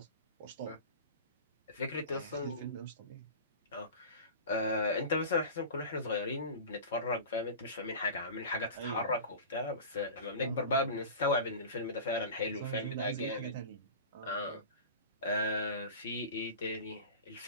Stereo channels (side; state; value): both; inverted; correlation -0.33